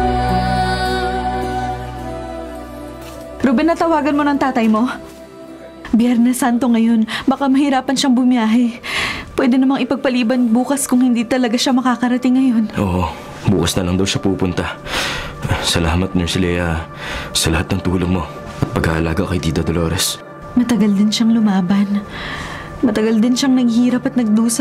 Ruben, natawagan mo ng tatay mo? Biyernes Santo ngayon, baka mahirapan siyang bumiyahe. Pwede namang ipagpaliban bukas kung hindi talaga siya makakarating ngayon. Oo, bukas na lang daw siya pupunta. Salamat, Nurse Lea, sa lahat ng tulong mo at pag-aalaga kay Tita Dolores. Matagal din siyang lumaban. Matagal din siyang naghihirap at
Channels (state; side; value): identical; both; correlation 1.00